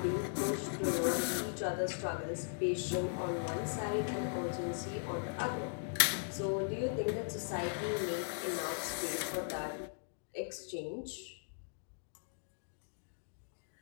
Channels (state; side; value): silent; right; digital silence